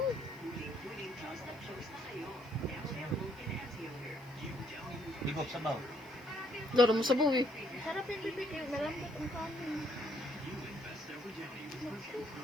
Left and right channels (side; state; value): right; noise; hiss, 26 dB below the sound